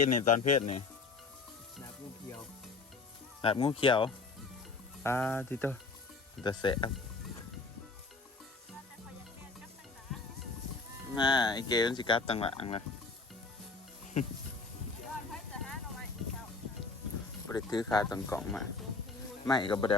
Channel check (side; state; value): right; quieter; 4.1 dB